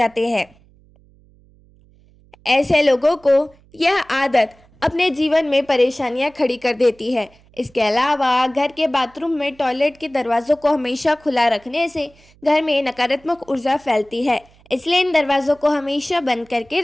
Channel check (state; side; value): noise; right; hum, 29 dB below the sound